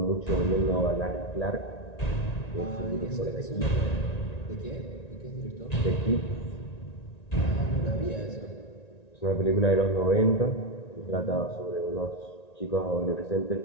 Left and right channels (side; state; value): right; late; 1.9 ms